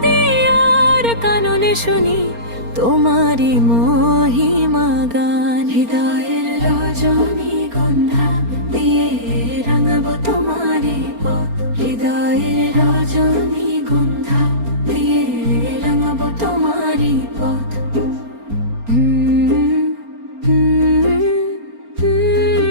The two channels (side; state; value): left; late; 4.3 ms